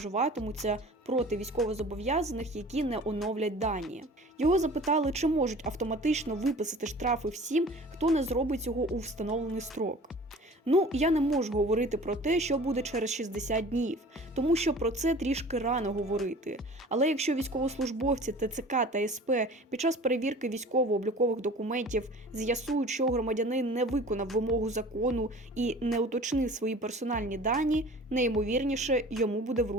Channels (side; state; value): both; normal; correlation 0.44